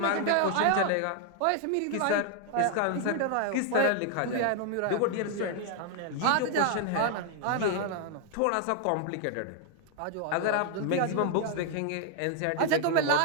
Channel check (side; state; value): both; different; correlation 0.00